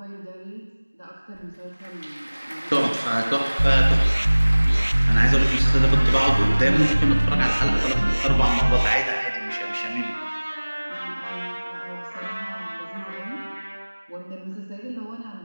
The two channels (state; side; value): inverted; both; correlation -1.00